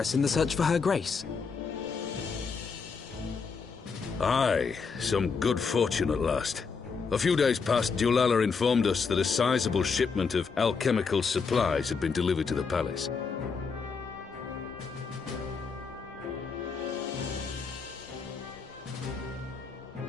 in the search for Her Grace. Aye, some good fortune at last. A few days past, Dulala informed us that a sizable shipment of alchemical supplies had been delivered to the palace.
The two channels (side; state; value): right; quieter; 5.2 dB